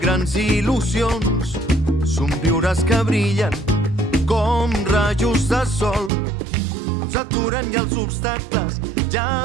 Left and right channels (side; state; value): left; drops out; at 6.1 s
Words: grans il·lusions, somriures que brillen com rajos de sol. No ens aturem i els obstacles, ja